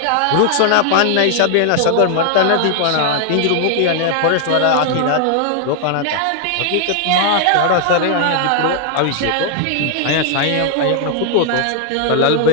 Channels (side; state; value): both; different; correlation 0.00